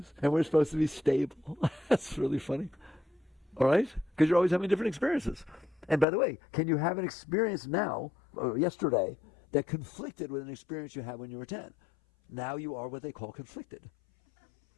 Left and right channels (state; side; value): drops out; right; at 6.1 s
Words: And we're supposed to be stable. That's really funny. All right? Because you're always having different experiences. And by the way, can you have an experience now, or yesterday, that conflicted with an experience you had when you were 10? Now you are what they call conflicted.